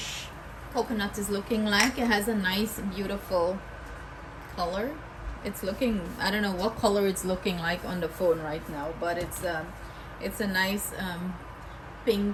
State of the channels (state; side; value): identical; both; correlation 1.00